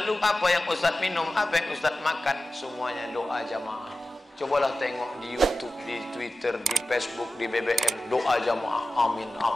apa yang Ustadz minum, apa yang Ustadz makan? Semuanya doa jamaah. Cobalah tengok di YouTube, di Twitter, di Facebook, di BBM, doa jamaah. Amin,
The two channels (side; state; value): both; normal; correlation 0.95